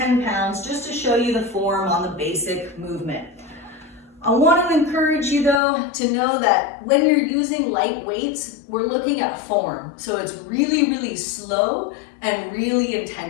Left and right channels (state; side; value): drops out; right; at 5.6 s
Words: pounds just to show you the form on the basic movement. I want to encourage you though to know that when you're using light weights, we're looking at form. So it's really, really slow and really